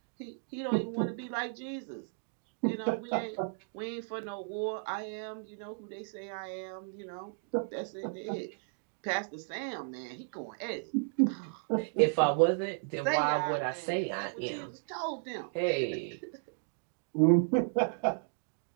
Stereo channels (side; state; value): left; silent; digital silence